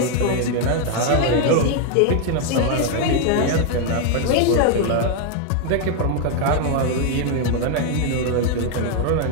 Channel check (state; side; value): different; both; correlation 0.00